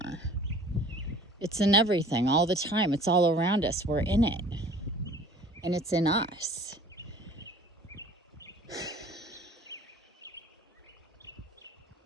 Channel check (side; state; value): both; normal; correlation 0.49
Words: It's in everything, all the time. It's all around us. We're in it. And it's in us.